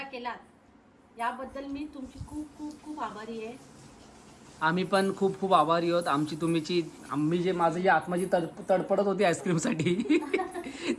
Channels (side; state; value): both; identical; correlation 1.00